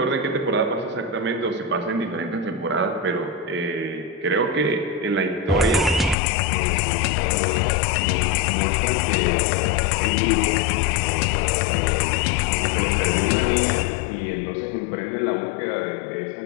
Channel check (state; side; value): drops out; right; at 6.2 s